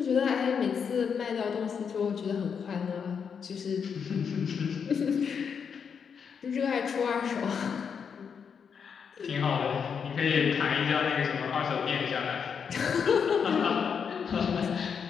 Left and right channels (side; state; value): right; quieter; 6.7 dB